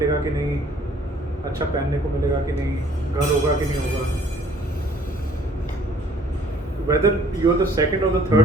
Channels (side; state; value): both; normal; correlation 0.57